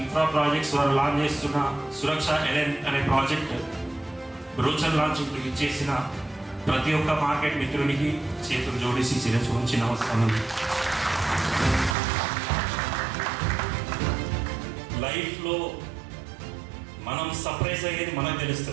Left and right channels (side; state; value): left; drops out; at 12.0 s